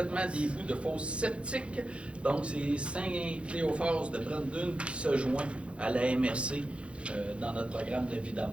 des bouts de fosses septiques. Donc, c'est Saint-Cléophas de Brandon qui se joint à la MRC dans notre programme de vidange.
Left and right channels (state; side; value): late; left; 0.060 ms